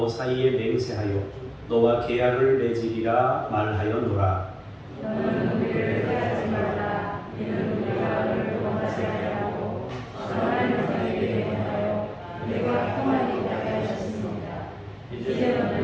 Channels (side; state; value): both; identical; correlation 1.00